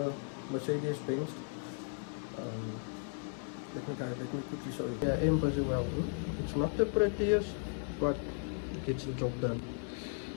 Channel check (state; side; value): silent; right; 54 dB below the other